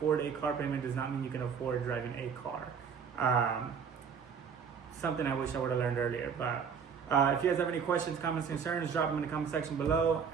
a car payment does not mean you can afford driving a car. Something I wish I would have learned earlier. But if you guys have any questions, comments, concerns, drop them in the comment section below,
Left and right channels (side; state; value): left; quieter; 6.6 dB